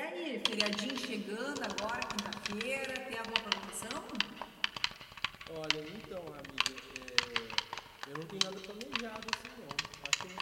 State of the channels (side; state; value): both; identical; correlation 1.00